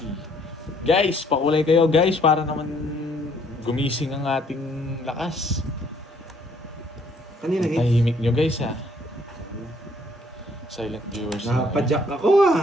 Guys, pakulay kayo guys para naman gumising ang ating lakas. Kanina hit. Tahimik nyo guys ha. Silent viewers na. Napadyak ako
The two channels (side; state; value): both; normal; correlation 0.64